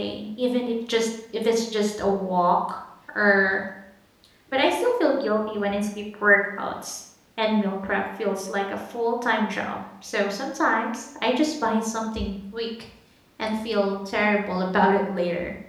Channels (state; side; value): identical; both; correlation 1.00